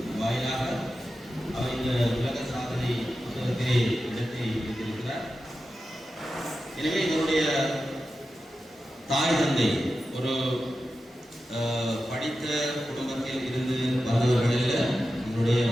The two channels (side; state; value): both; normal; correlation 0.92